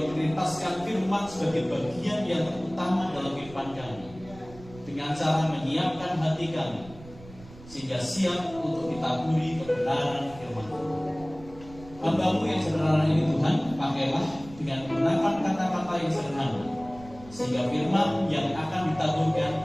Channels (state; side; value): noise; right; rumble, 19 dB below the sound